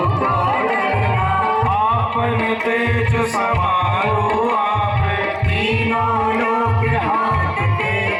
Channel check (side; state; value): both; identical; correlation 1.00